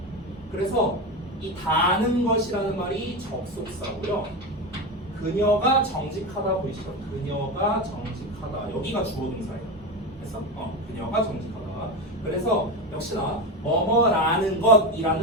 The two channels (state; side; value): normal; both; correlation 0.19